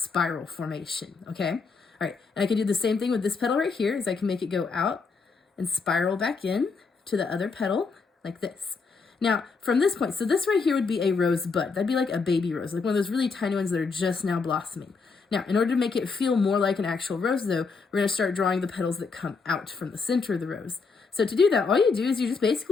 formation, okay? All right, and I can do the same thing with this petal right here, is I can make it go out and spiral back in to the other petal like this. Now, from this point, so this right here would be a rosebud. That'd be like a baby rose, like one of those really tiny ones that are just now blossoming. Now, in order to make it feel more like an actual rose, though, we're going to start drawing the petals that come out from the center of the rose. So to do that, all you do is you just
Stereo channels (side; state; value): right; quieter; 4.7 dB